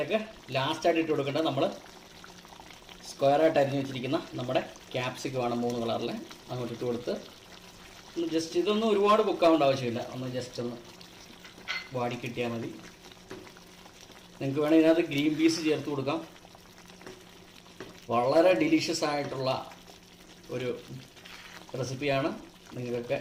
ലാസ്റ്റായിട്ട് ഇട്ട് കൊടുക്കേണ്ടത് നമ്മൾ സ്ക്വയറായിട്ട് അരിഞ്ഞ് വെച്ചിരിക്കുന്ന നമ്മുടെ ക്യാപ്സിക്കമാണ് 3 കളറിൽ. അങ്ങോട്ട് ഇട്ട് കൊടുത്ത് ഒന്ന് ജസ്റ്റ്, ഇതൊന്നും ഒരുപാട് കുക്കാവേണ്ട ആവശ്യമില്ല, ഒന്ന് ജസ്റ്റ് ഒന്ന് വാടി കിട്ടിയാൽ മതി. നിങ്ങൾക്ക് വേണമെങ്കിൽ ഇതിനകത്ത് ഗ്രീൻ പീസ് ചേർത്ത് കൊടുക്കാം. വളരെ ഡിലീഷ്യസ് ആയിട്ടുള്ള ഒരു റെസിപ്പിയാണ്. നിങ്ങൾക്കൊക്കെ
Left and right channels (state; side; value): identical; both; correlation 1.00